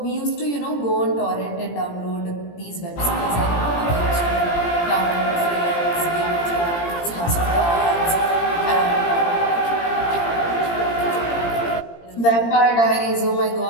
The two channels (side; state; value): right; late; 17 ms